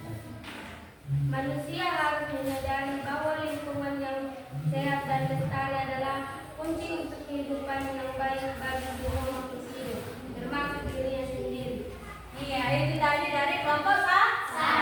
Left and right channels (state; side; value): identical; both; correlation 1.00